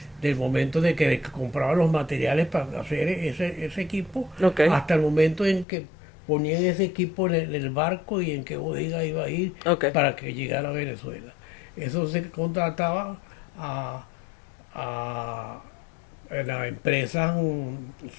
del momento de que compraba los materiales para hacer ese equipo Ok. hasta el momento en que ponían ese equipo en el barco y en qué bodega iba a ir Ok. para que llegara a Venezuela. Eso se contrataba a la empresa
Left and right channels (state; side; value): drops out; right; at 5.7 s